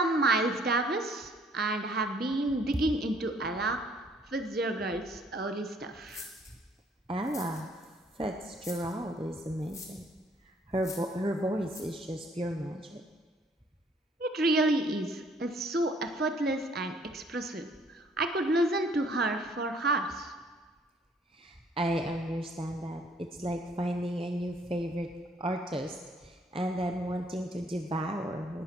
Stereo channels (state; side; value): normal; both; correlation 0.62